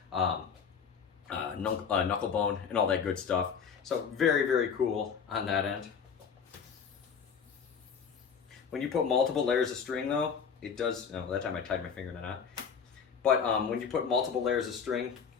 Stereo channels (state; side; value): quieter; right; 6.6 dB